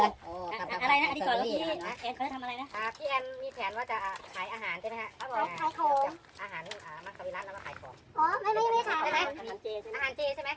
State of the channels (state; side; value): identical; both; correlation 1.00